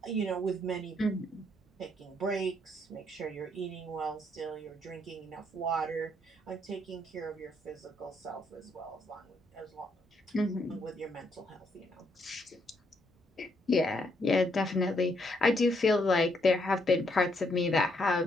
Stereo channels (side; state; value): both; normal; correlation 0.73